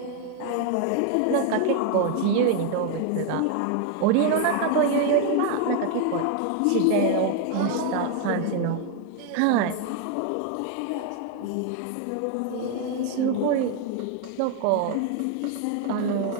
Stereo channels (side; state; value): both; different; correlation 0.01